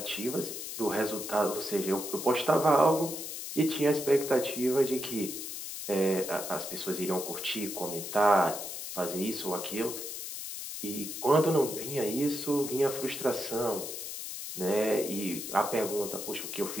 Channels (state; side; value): noise; left; hiss, 7 dB below the sound